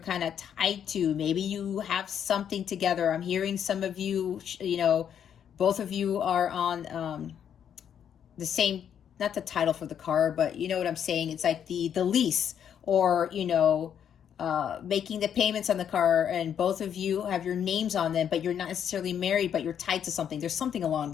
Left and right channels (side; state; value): right; quieter; 8.8 dB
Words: of tied to. Maybe you have something together. I'm hearing some of you, you know, both of you are on the same, not the title for the car, but you know what I'm saying? It's like the lease, or, you know, making the payments on the car, and both of you have your names on them, but you're not necessarily married, but you're tied to something. There's something along